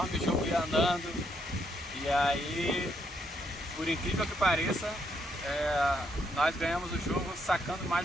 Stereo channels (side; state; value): both; normal; correlation 0.75